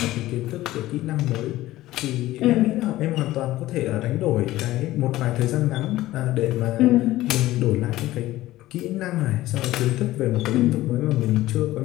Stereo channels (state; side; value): quieter; right; 16.2 dB